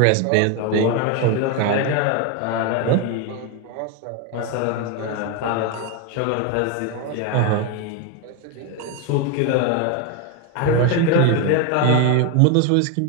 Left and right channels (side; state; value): both; different; correlation 0.02